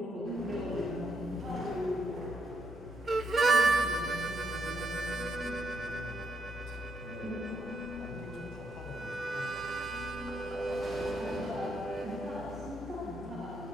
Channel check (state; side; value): normal; both; correlation 0.76